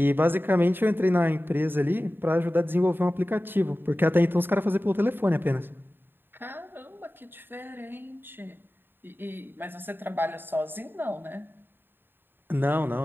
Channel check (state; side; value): late; left; 0.097 ms